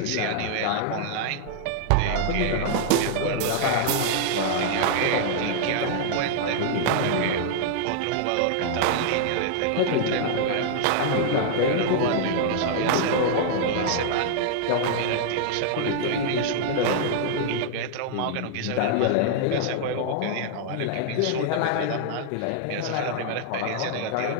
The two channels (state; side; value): different; both; correlation -0.01